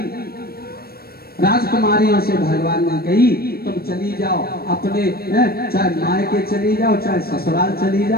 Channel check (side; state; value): right; late; 0.44 ms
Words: राजकुमारियों से भगवान ने कही तुम चली जाओ अपने, चाहे मायके चली जाओ चाहे ससुराल चली